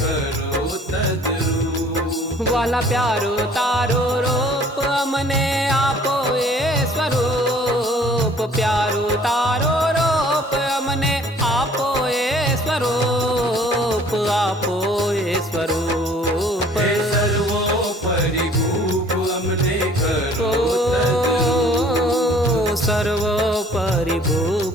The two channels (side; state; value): both; normal; correlation 0.54